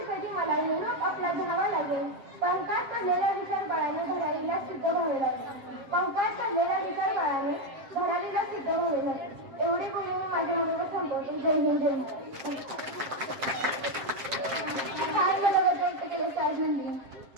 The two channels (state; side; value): late; left; 7.6 ms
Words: कधी मला निरोप आपला घ्यावा लागेल, पंखात पडलेला विचार बाळाने भरारीला सिद्ध व्हावे लागेल, पंखात पडलेला विचार बाळाने भरारीला सिद्ध व्हावे लागेल। एवढे बोलून मी माझ्या मनोगत संपवतो। जय हिंद, जय महाराष्ट्र।